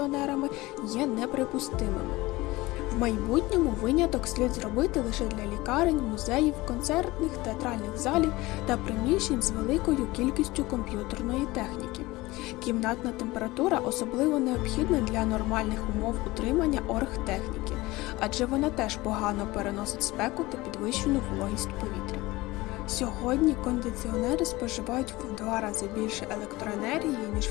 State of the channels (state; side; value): quieter; right; 20.1 dB